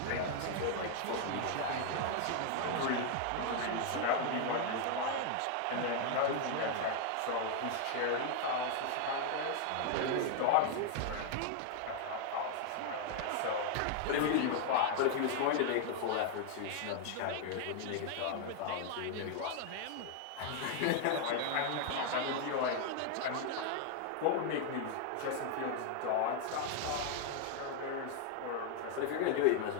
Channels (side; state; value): both; different; correlation 0.00